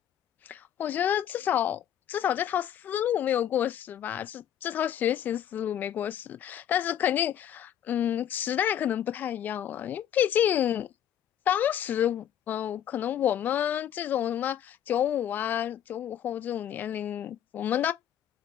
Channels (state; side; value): quieter; right; 10.2 dB